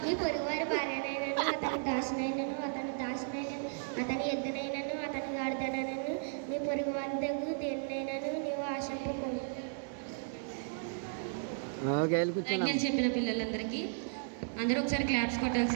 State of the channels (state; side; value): silent; left; digital silence